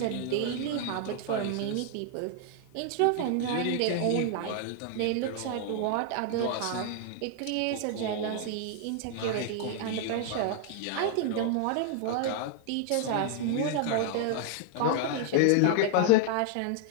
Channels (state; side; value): different; both; correlation 0.00